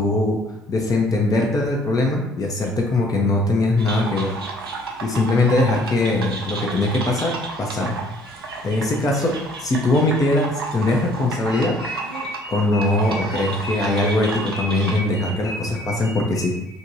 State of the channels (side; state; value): both; normal; correlation 0.59